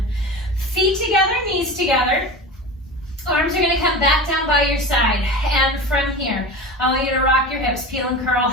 Feet together, knees together. Arms are gonna come back down by your side. And from here, I want you to rock your hips, peel and curl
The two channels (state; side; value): normal; both; correlation 0.30